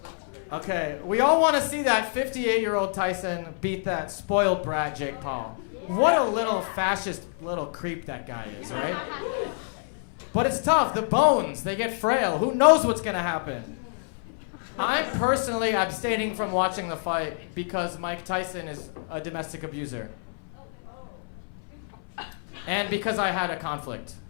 Okay, we all want to see that 58-year-old Tyson beat that spoiled brat Jake Paul. What a little fascist little creep that guy is, right? But it's tough. The bones, they get frail. Who knows what's going to happen? I'm personally abstaining from watching the fight because Mike Tyson is a domestic abuser. And because I had a conflict.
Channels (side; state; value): right; silent; 60 dB below the other